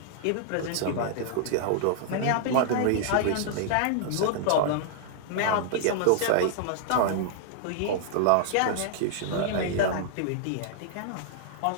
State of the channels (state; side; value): different; both; correlation -0.01